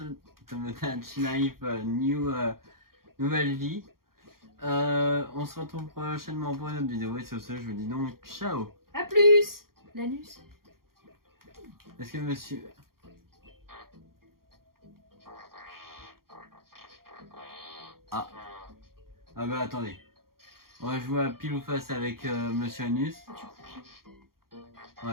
Tomodachi Life Nouvelle Vie. On se retrouve prochainement pour une autre vidéo et sur ce je vous dis donc ciao. A plus. L'anus. Est-ce que monsieur... Ah bah attendez. On va jouer à pile ou face avec Monsieur Anus.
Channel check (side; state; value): left; late; 0.93 ms